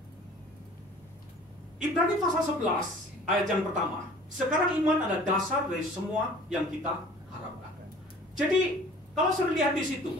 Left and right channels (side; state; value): both; normal; correlation 0.48